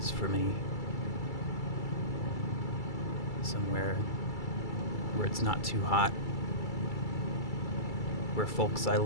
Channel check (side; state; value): right; late; 2.3 ms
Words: for me. Somewhere where it's not too hot, where folks I